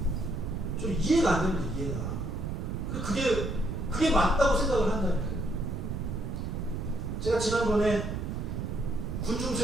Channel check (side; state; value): right; noise; rumble, 3 dB below the sound